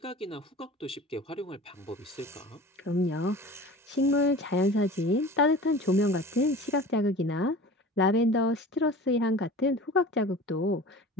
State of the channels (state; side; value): normal; both; correlation 0.39